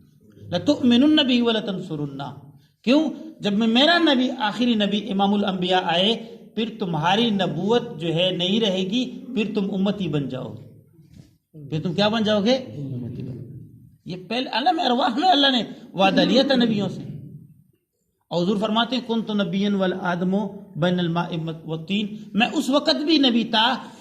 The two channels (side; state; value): both; identical; correlation 1.00